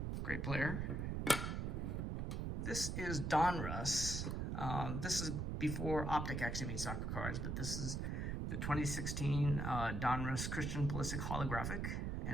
great player. This is Donruss. This is before Optic actually made soccer cards, but this is the 2016 Donruss Christian Pulisic holographic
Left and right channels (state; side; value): noise; right; rumble, 1 dB below the sound